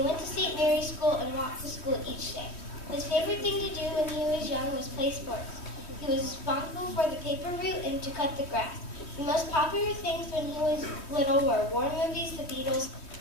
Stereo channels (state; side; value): late; right; 3.1 ms